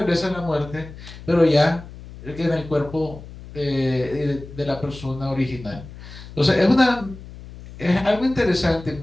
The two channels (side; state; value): left; noise; hum, 15 dB below the sound